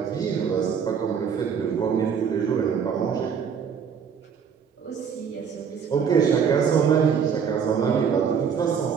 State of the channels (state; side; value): quieter; left; 7.0 dB